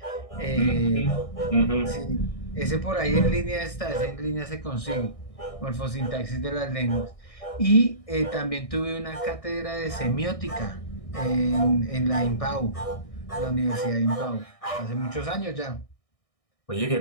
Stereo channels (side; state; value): right; late; 1.6 ms